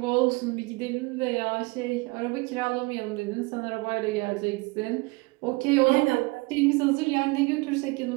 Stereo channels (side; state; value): left; quieter; 25.4 dB